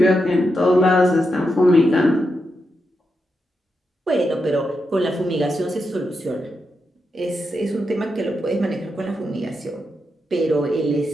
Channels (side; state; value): both; normal; correlation 0.86